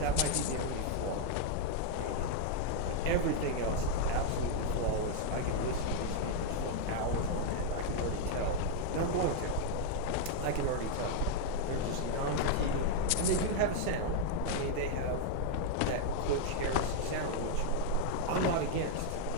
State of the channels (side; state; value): both; different; correlation 0.00